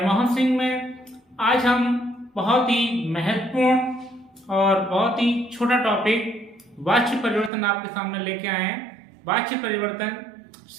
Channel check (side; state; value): left; drops out; at 7.5 s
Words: सिंह में। आज हम बहुत ही महत्वपूर्ण और बहुत ही छोटा टॉपिक वाच्य परिवर्तन आपके सामने लेके आए हैं। वाच्य परिवर्तन